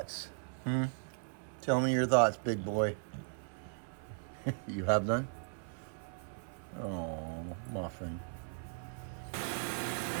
Tell me your thoughts, big boy. You have none? Oh, muffin.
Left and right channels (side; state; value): left; silent; 53 dB below the other